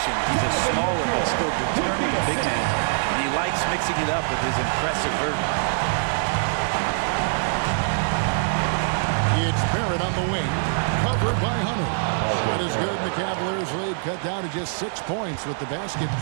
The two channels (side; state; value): left; silent; digital silence